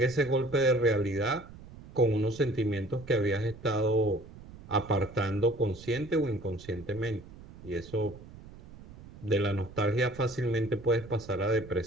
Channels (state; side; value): noise; right; rumble, 18 dB below the sound